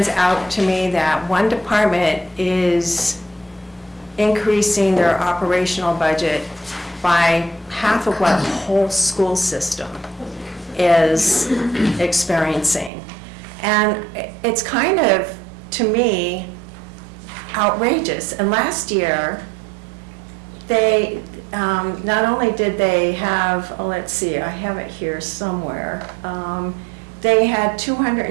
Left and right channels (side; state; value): left; drops out; at 12.9 s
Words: out to me, that one department is increasing their operational budget by half of what the whole school system is experiencing. And it's kind of, to me, outrageous. And last year, they, not only did they have, let's see, I have it here somewhere, they had